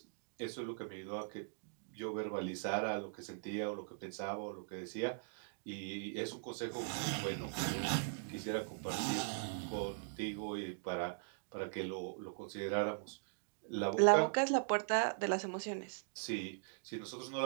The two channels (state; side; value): silent; left; digital silence